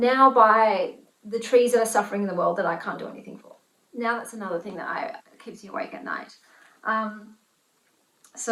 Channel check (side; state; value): both; identical; correlation 1.00